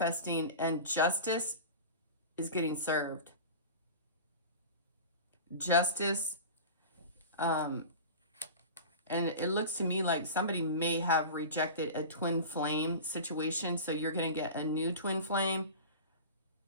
and justice is getting served. Justice, and it looks to me like somebody may have rejected a twin flame situation, so you're going to get a new twin flame.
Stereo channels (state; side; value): inverted; both; correlation -0.32